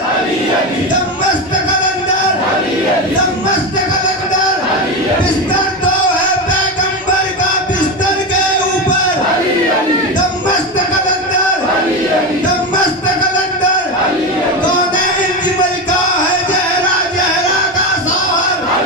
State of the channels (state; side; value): normal; both; correlation 0.17